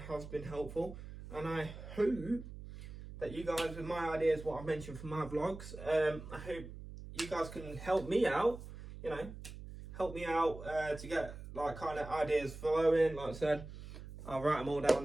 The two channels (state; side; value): noise; right; hum, 12 dB below the sound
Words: has been helpful, and I hope that you guys, with my ideas, what I've mentioned for my vlogs, I hope you guys can help me out, you know, to get like kind of ideas flowing. Like I said, I'll write them all